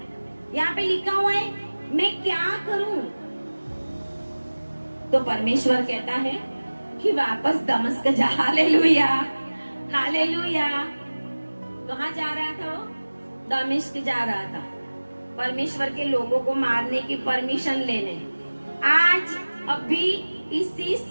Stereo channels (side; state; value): both; inverted; correlation -1.00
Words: यहाँ पे लिखा हुआ है मैं क्या करूं, तो परमेश्वर कहता है कि वापस दमिश्क जा। Hallelujah, hallelujah. कहाँ जा रहा था वो? दमिश्क जा रहा था, परमेश्वर के लोगों को मारने की परमिशन लेने। आज अभी इसी